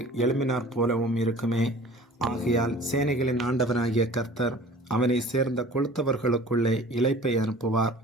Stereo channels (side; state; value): both; normal; correlation 0.45